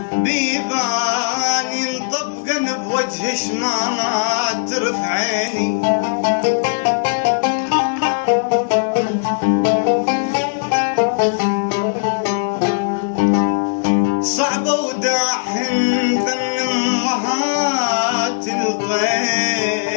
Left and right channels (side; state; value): right; silent; digital silence